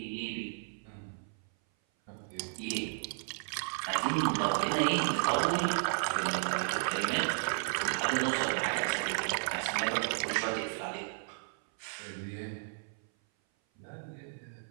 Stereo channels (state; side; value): silent; left; 55 dB below the other